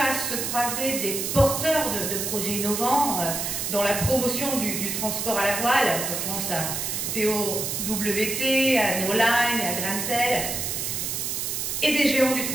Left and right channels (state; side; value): noise; right; hiss, 2 dB below the sound